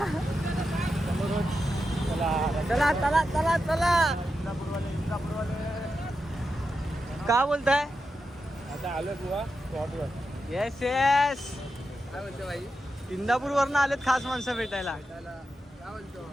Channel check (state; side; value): normal; both; correlation 0.88